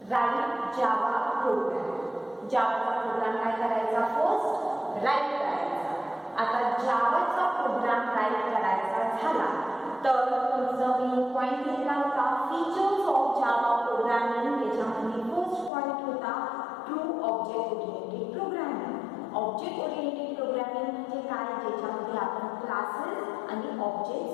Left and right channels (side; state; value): right; drops out; at 15.7 s